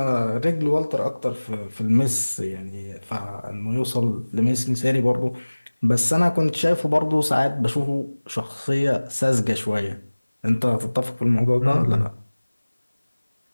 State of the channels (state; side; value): inverted; both; correlation -1.00